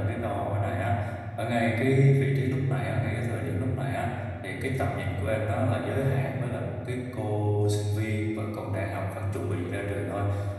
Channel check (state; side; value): identical; both; correlation 1.00